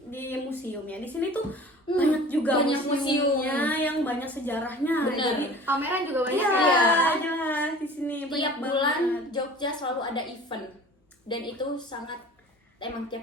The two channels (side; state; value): both; normal; correlation 0.44